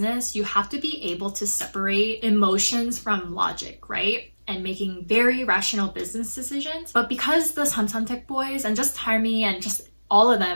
you have to be able to separate emotions from logic, right? And making very rational business decisions. But because the Samsung boys and just Tarmi and just all of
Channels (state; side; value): inverted; both; correlation -1.00